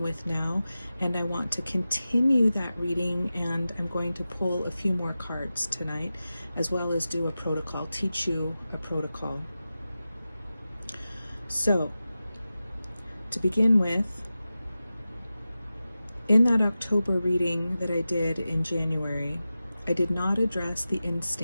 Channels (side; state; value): both; inverted; correlation -0.94